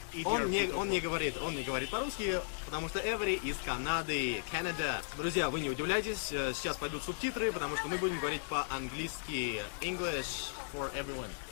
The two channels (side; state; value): right; silent; digital silence